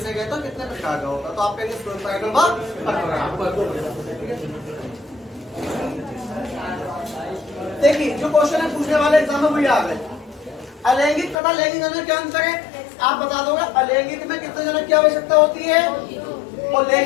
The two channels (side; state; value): right; drops out; at 11.4 s